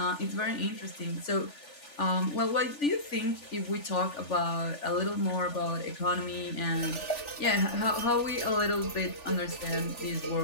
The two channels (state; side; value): late; right; 3.4 ms